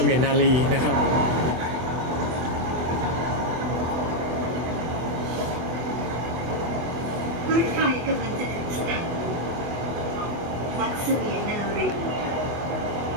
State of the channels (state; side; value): late; left; 24 ms